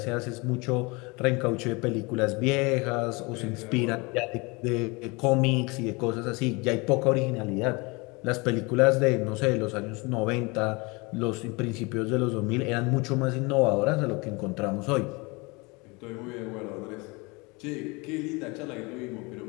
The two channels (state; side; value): quieter; right; 26.9 dB